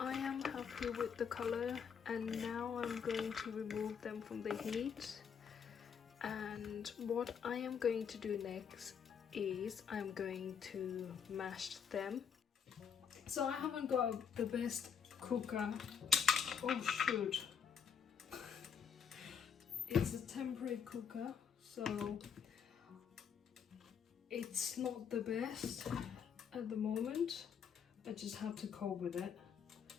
am happy with the color, and now I'm going to remove them from the heat And what I am going to do next is I'm going to mash them. So I haven't got the best cooker. Oh shoot. It's a temporary cooker, so it's not the best at the moment. I just have to cope with it.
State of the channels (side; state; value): right; quieter; 7.4 dB